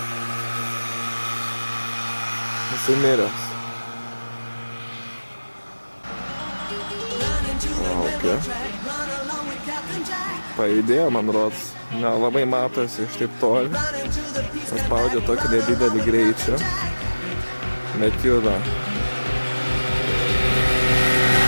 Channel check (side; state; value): both; inverted; correlation -1.00